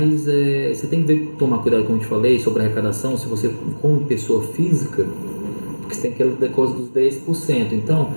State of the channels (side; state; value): both; inverted; correlation -1.00